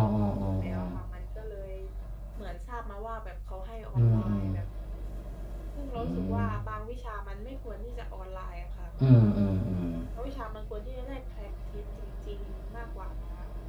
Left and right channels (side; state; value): both; identical; correlation 1.00